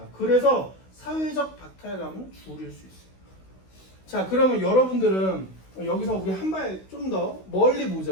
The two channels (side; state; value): right; late; 16 ms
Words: 그래서 사회적 박탈감은 줄일 수 있어요. 자, 그러면 여러분들은 여기서 우리 한 발 좀 더 멀리